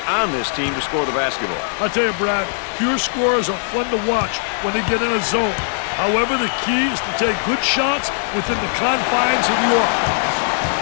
on this team to score the basketball. I tell you, Brad, pure scorers are fun to watch when they get in a zone. However, the key is to take good shots within the confines of the offense.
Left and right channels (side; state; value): right; silent; digital silence